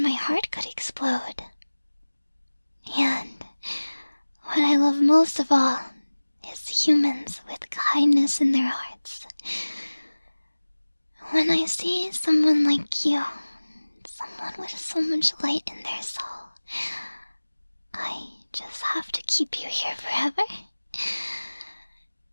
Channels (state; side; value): inverted; both; correlation -1.00